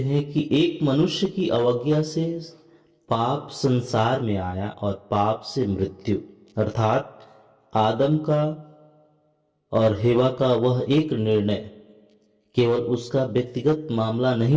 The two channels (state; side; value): identical; both; correlation 1.00